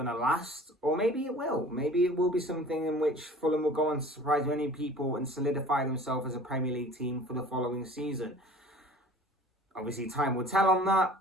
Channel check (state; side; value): normal; both; correlation 0.45